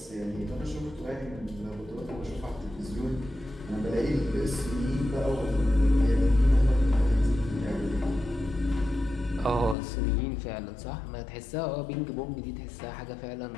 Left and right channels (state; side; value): drops out; right; at 9.8 s